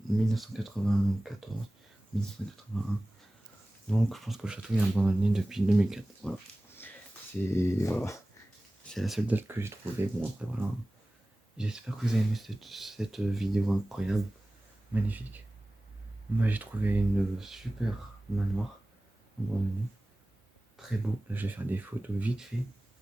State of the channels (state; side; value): normal; both; correlation 0.97